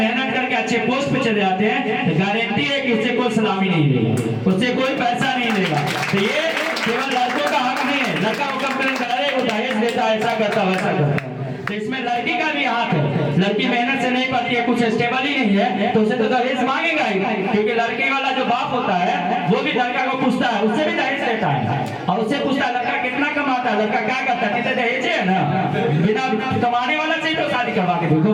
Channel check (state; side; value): identical; both; correlation 1.00